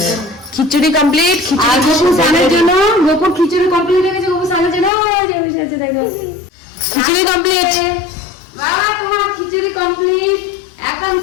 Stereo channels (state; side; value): drops out; right; at 4.9 s